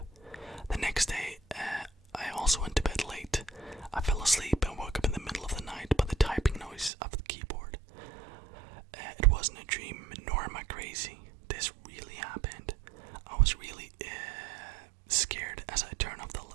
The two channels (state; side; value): drops out; left; at 6.9 s